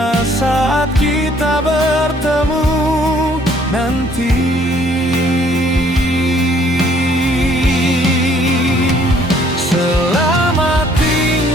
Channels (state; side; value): normal; both; correlation 0.62